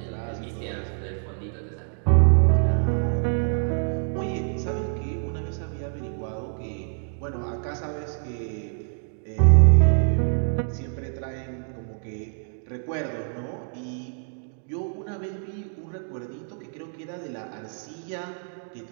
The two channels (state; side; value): silent; left; digital silence